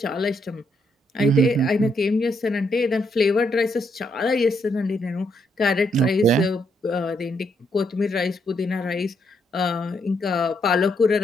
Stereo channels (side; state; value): both; normal; correlation 0.76